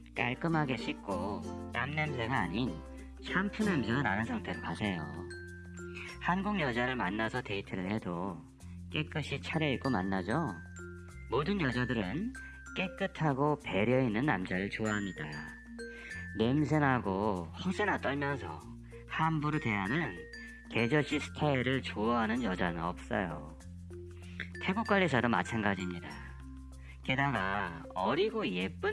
깔끔하게 씻고 땀 냄새가 아닌 샴푸 냄새가 나는 상태로 가세요. 한국 여자를 만나서 데이트를 해도 깨끗이 차려입고 만나죠. 모든 여자들은 깨끗하고 배려있는 남자를 좋아합니다. 냄새나고 허세나 떨면서 함부로 대하는 개저씨 스타일을 좋아하는 여자는 없어요. 태국 관리사도 마찬가지입니다. 게다가 어리고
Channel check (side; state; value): both; identical; correlation 1.00